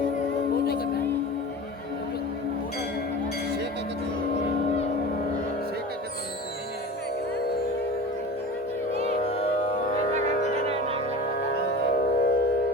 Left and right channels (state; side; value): normal; both; correlation 0.34